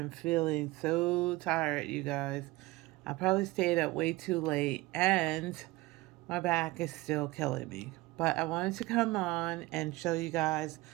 feeling so tired, you guys. I probably stayed up way too late and my back is still killing me. But I wanted to come on and show you guys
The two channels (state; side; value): quieter; left; 20.4 dB